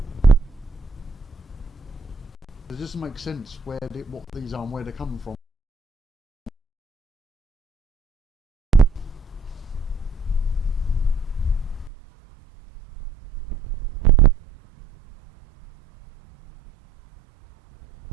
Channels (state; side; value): drops out; left; at 11.9 s